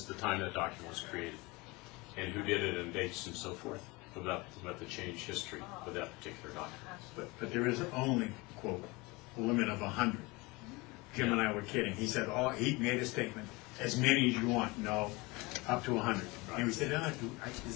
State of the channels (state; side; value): quieter; right; 24.4 dB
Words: the time that document was created, and who did it, and dates, and so forth, about the change history of that particular document. But there is only, quote, a limit of 100. Jim and I were kidding. He said, he made a statement, as many as you want. No, up to 100. And we said,